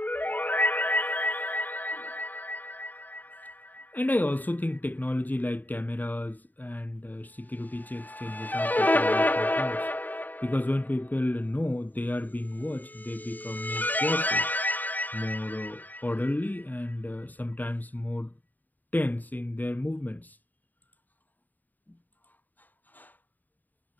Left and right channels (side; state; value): right; late; 0.085 ms